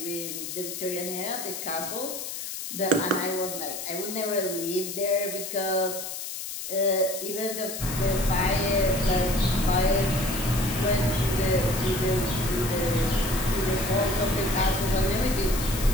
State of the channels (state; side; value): noise; left; hiss, 7 dB below the sound